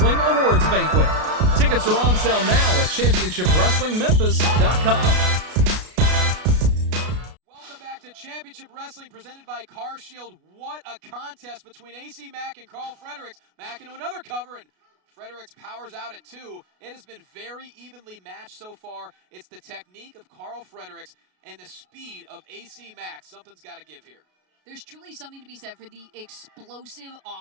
Awards Banquet. Tickets are on sale now at ChampionshipWrestlingMemphis.com. To Championship Wrestling presented by Car Shield. What a contest between AC Mack and Karl Fredericks. Mack into another cover, and Fredericks powers out at two. It has been very evenly matched so far. It's the technique of Karl Fredericks and the speed of AC Mack. Something's got to give here. There's truly something to be said for the explosive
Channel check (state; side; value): late; left; 33 ms